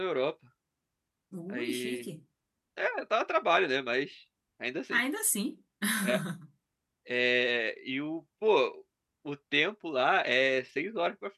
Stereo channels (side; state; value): both; identical; correlation 1.00